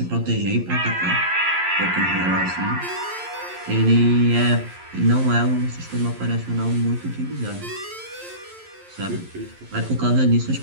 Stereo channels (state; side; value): late; left; 11 ms